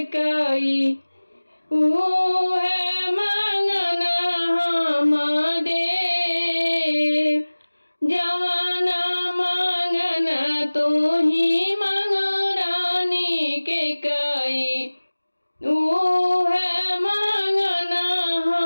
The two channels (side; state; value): both; inverted; correlation -1.00